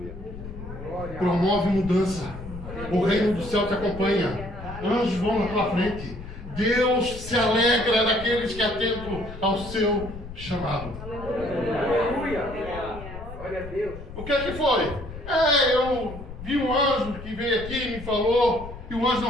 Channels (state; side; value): noise; left; rumble, 12 dB below the sound